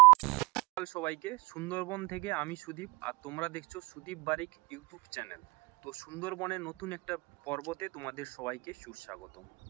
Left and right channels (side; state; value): left; quieter; 24.5 dB